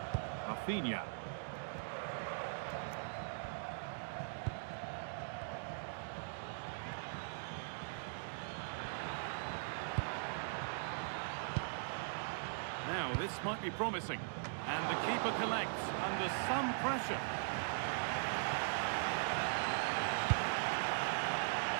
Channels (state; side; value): silent; left; digital silence